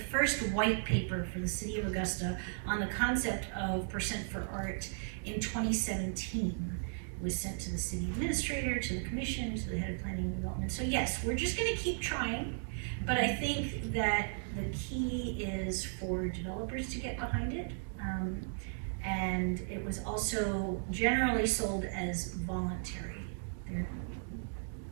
white paper for the city of Augusta on the concept of percent for art in 2017. It was sent to the city administrator, to the commission, to the head of planning and development. So yes, we're just gonna keep trying, but I think that the key is for developers to get behind it. And it was also generally sold as voluntary.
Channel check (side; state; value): left; silent; digital silence